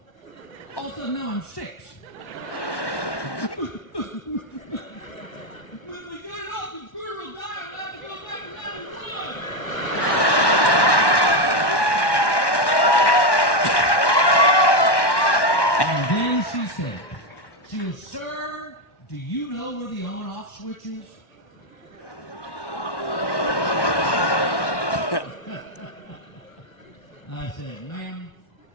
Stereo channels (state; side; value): late; right; 1.1 ms